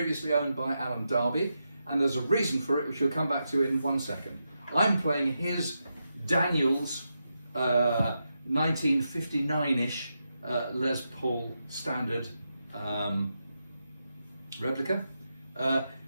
owned by Alan Darby, and there's a reason for it, which we'll come back to in 1 second. I'm playing his Daniels 1959-ish Les Paul standard replica,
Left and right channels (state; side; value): inverted; both; correlation -0.86